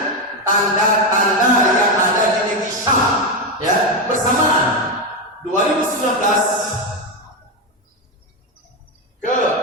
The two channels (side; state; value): both; normal; correlation 0.09